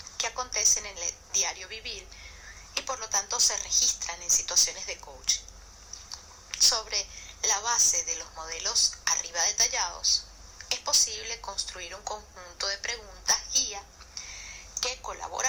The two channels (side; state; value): both; identical; correlation 1.00